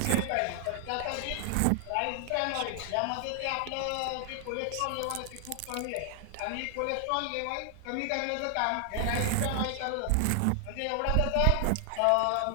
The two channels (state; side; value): different; both; correlation 0.00